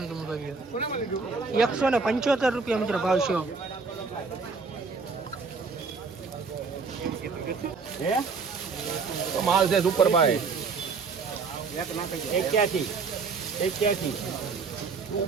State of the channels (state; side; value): quieter; left; 4.8 dB